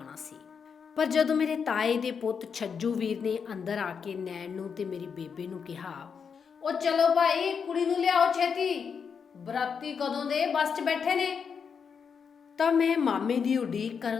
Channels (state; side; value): quieter; right; 6.4 dB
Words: ਸੀ। ਪਰ ਜਦੋਂ ਮੇਰੇ ਤਾਏ ਦੇ ਪੁੱਤ ਛੱਜੂ ਵੀਰ ਨੇ ਅੰਦਰ ਆ ਕੇ ਨੈਣ ਨੂੰ ਤੇ ਮੇਰੀ ਬੇਬੇ ਨੂੰ ਕਿਹਾ, ਉਹ ਚਲੋ ਭਾਈ ਕੁੜੀ ਨੂੰ ਲਿਆਓ ਛੇਤੀ, ਬਰਾਤੀ ਕਦੋਂ ਦੇ ਬੱਸ 'ਚ ਬੈਠੇ ਨੇ, ਤਾਂ ਮੈਂ ਮਾਮੇ ਦੀ ਉਡੀਕ